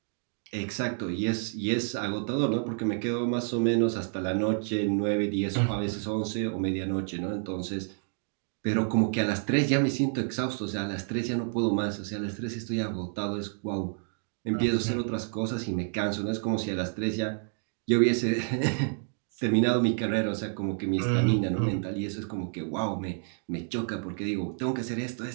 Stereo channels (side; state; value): left; silent; 58 dB below the other